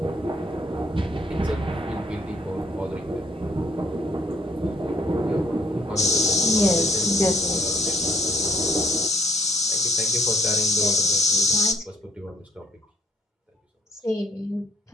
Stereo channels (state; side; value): normal; both; correlation 0.65